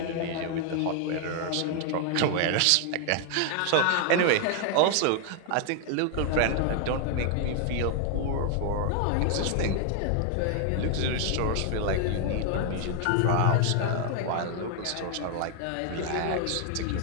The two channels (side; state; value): both; different; correlation 0.00